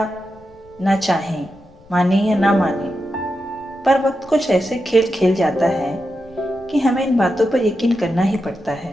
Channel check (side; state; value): left; noise; rumble, 27 dB below the sound